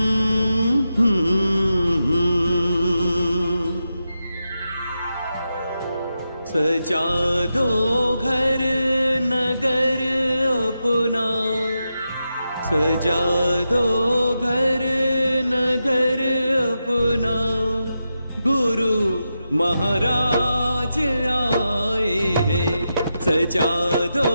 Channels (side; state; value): both; inverted; correlation -0.88